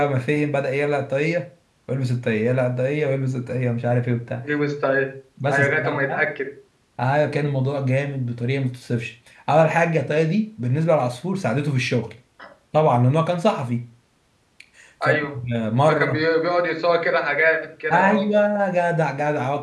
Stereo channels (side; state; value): both; identical; correlation 1.00